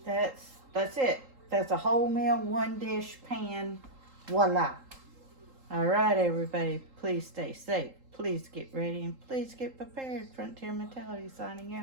That's it. That's a whole meal, one dish, pan, voila. All right, everybody, please stay safe. Please get ready and please get prepared. Frontier Mentality signing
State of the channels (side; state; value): left; late; 3.8 ms